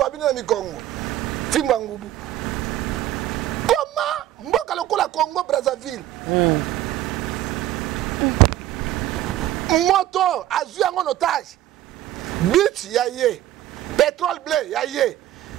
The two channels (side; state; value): left; quieter; 13.7 dB